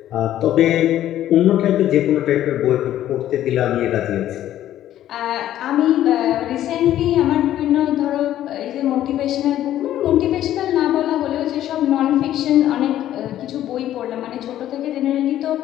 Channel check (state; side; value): quieter; right; 12.4 dB